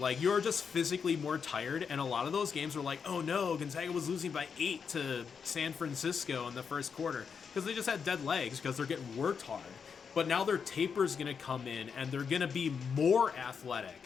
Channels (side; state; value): right; quieter; 6.3 dB